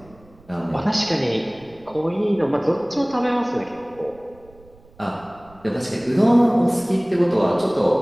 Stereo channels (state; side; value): noise; right; rumble, 27 dB below the sound